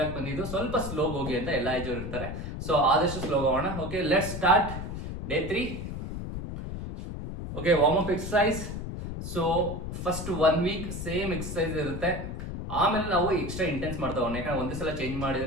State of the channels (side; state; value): left; noise; rumble, 6 dB below the sound